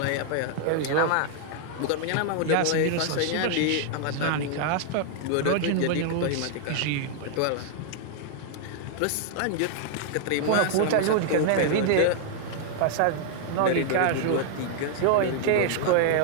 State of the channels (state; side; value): different; both; correlation -0.01